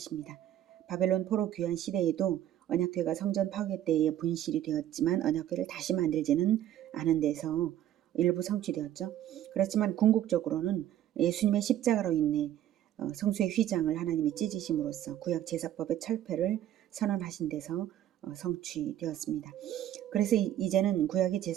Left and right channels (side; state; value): left; quieter; 11.8 dB